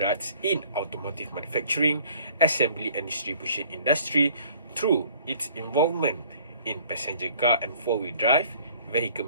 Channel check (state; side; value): inverted; both; correlation -0.54